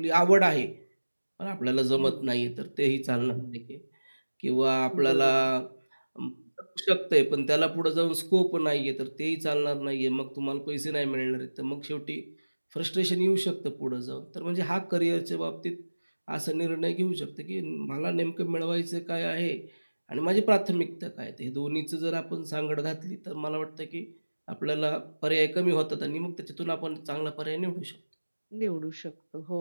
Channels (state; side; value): inverted; both; correlation -1.00